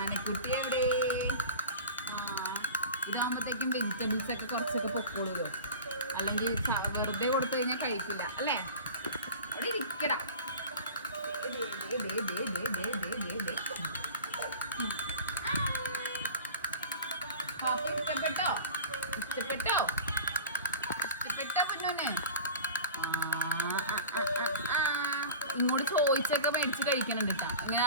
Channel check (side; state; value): both; inverted; correlation -0.35